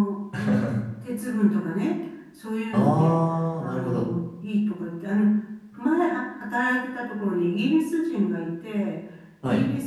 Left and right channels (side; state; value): both; identical; correlation 1.00